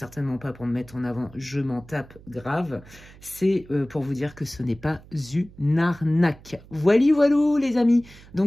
pas pour me mettre en avant, je m'en tape grave. C'est pour vous dire que ce n'est pas une arnaque. Voili voilou les amis.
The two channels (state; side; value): noise; right; hum, 22 dB below the sound